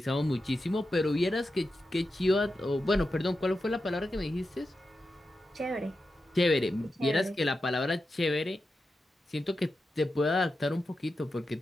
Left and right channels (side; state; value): both; normal; correlation 0.90